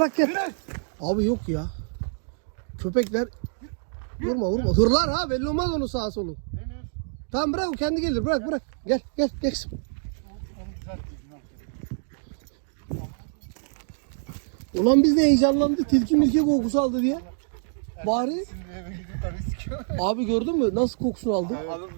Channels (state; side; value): silent; left; digital silence